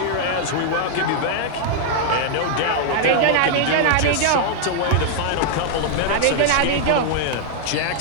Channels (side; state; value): both; different; correlation 0.00